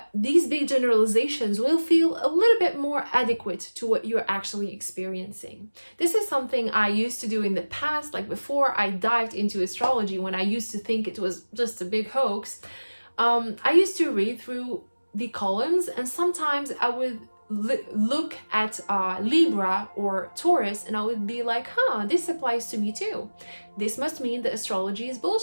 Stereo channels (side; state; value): both; inverted; correlation -1.00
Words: these big generalizations will feel a little bit more adequate to what you're actually experiencing. This is something I used to do in the past, like before I dived into astrology, when I used to think it was just a big hoax. I used to read through the columns, and sometimes I would look at Libra or Taurus, and I would be like, this applies to me too. This must mean that astrology is